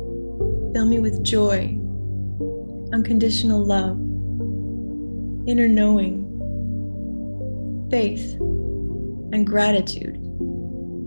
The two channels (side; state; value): both; inverted; correlation -1.00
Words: Fill me with joy, unconditional love, inner knowing, faith, and gratitude